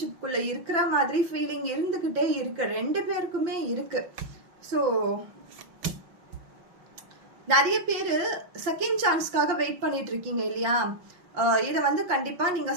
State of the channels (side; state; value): left; late; 5.8 ms